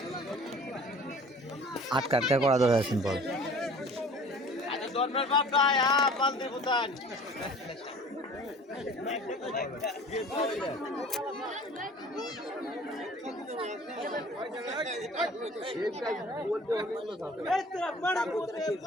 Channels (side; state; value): both; normal; correlation 0.46